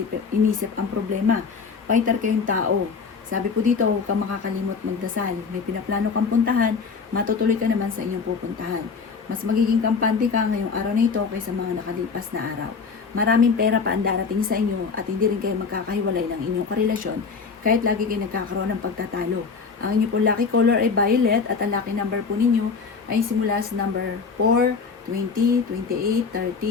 ang problema. Fighter kayong tao. Sabi po dito, huwag kang makakalimot magdasal. May pinaplano kang puntahan, matutuloy ka naman sa inyong pupuntahan. Mas magiging kampante ka ngayong araw na ito kaysa mga nakalipas na araw. Maraming pera pa ang darating sa inyo at hindi rin kayo magkakahiwalay ng inyong karelasyon kahit lagi kayo nagkakaroon ng pagtatalo. Ang inyong po lucky color ay violet at ang lucky number po ninyo ay simula sa number 4, 20, 28,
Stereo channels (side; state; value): right; quieter; 5.2 dB